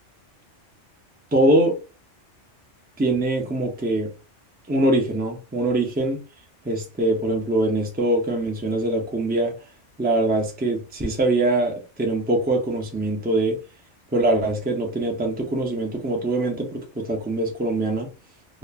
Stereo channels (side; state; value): both; normal; correlation 0.34